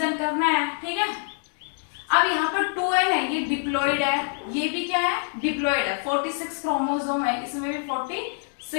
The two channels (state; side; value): silent; right; 61 dB below the other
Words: करना है। ठीक है, अब यहाँ पर 2n है, ये डिप्लॉइड है, ये भी क्या है, डिप्लॉइड है। 46 क्रोमोसोम है, इसमें भी